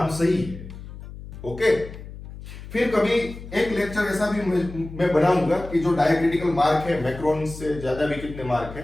सही है, ओके। फिर कभी एक लेक्चर ऐसा भी मैं बनाऊंगा कि जो डायक्रिटिकल मार्क है, मैक्रोन से ज्यादा भी कितने मार्क है,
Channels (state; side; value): noise; left; hum, 13 dB below the sound